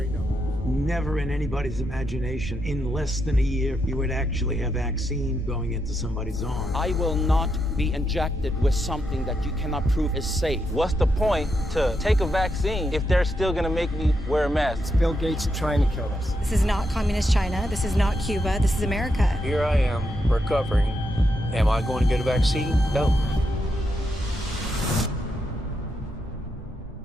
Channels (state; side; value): normal; both; correlation 0.82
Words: numbers. Never in anybody's imagination, in less than a year, you would actually have vaccine going into somebody's arm. I will not be injected with something that you cannot prove is safe. What's the point to take a vaccine if they're still gonna make me wear a mask? It's Bill Gates trying to kill us. This is not communist China. This is not Cuba. This is America. Here I am, recovering. Am I going to get a vaccine? No.